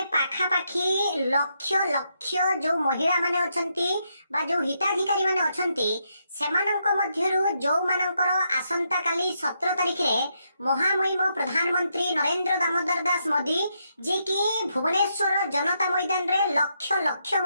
पाखापाखी लक्ष लक्ष जो महिला माने अछंती बा जो हिताधिकारी माने अछंती सेमानंक मध्यरु जो मानकर आसंता काली 17 तारिख रे महामहिम प्रधानमंत्री नरेंद्र दामोदर दास मोदी जे कि भुवनेश्वर जनता मैदान रे लक्ष लक्ष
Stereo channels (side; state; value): both; inverted; correlation -0.79